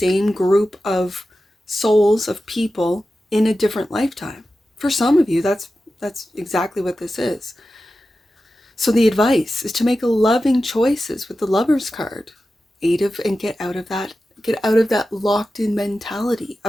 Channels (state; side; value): normal; both; correlation 0.93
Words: group of souls, of people in a different lifetime. For some of you, that's exactly what this is. So the advice is to make loving choices with the Lover's card. And get out of that locked in mentality